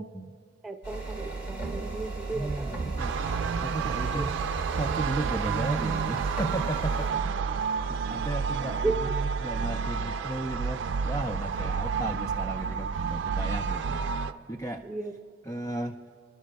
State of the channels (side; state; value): left; quieter; 4.0 dB